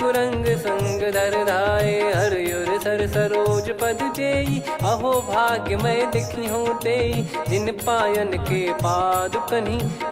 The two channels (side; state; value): both; identical; correlation 1.00